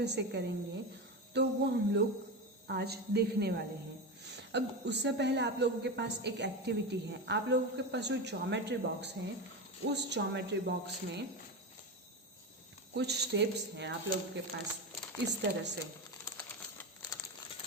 से करेंगे तो वो हम लोग आज देखने वाले हैं। अब उससे पहले आप लोगों के पास एक एक्टिविटी है। आप लोगों के पास जो ज्योमेट्री बॉक्स है, उस ज्योमेट्री बॉक्स में कुछ स्टेप्स हैं आप लोगों के पास इस तरह से।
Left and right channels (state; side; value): normal; both; correlation 0.20